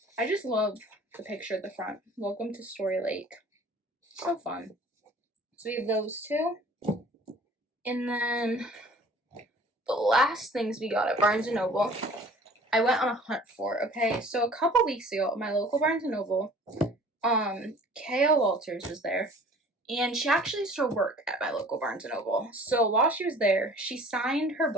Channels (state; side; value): normal; both; correlation 0.49